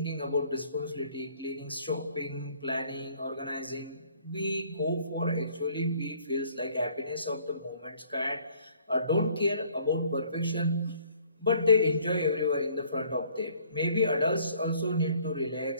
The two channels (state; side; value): inverted; both; correlation -0.58